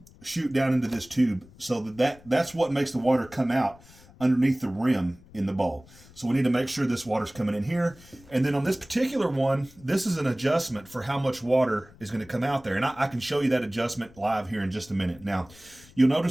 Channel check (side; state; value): left; noise; rumble, 24 dB below the sound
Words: shoot down into this tube so that's what makes the water come out underneath the rim in the bowl. So we need to make sure this water's coming in here. And then on this particular one, this is an adjustment for how much water is going to come out there. And I can show you that adjustment live here in just a minute. Now, you'll